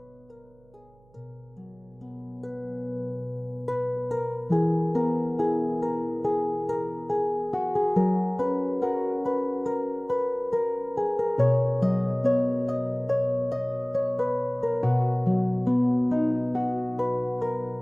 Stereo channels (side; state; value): right; noise; hum, 29 dB below the sound